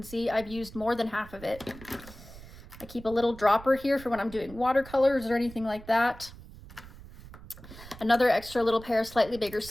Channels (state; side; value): noise; right; rumble, 17 dB below the sound